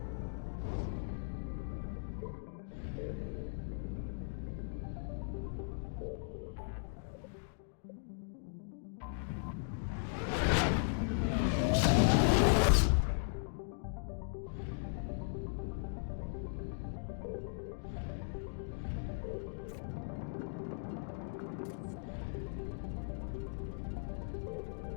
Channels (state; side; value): silent; right; digital silence